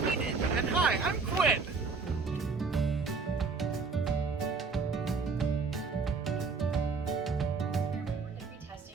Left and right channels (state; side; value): quieter; left; 4.6 dB